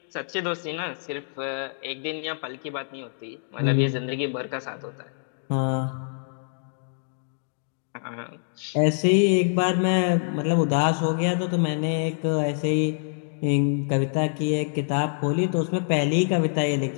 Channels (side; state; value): right; silent; digital silence